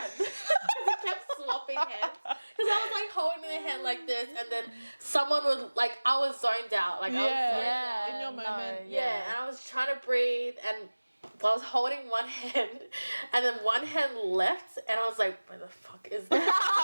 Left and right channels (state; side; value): inverted; both; correlation -1.00